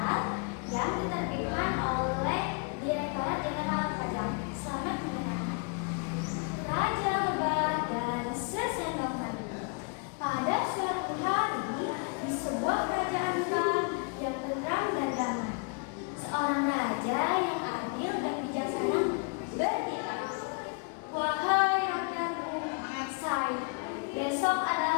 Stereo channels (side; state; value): right; quieter; 36.2 dB